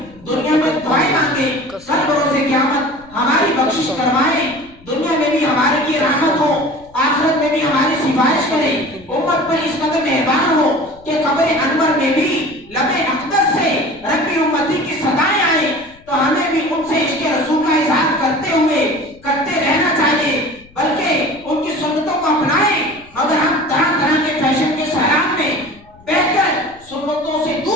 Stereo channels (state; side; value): noise; left; rumble, 26 dB below the sound